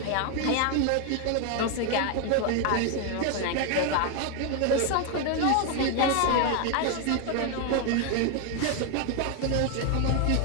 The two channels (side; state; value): both; different; correlation 0.01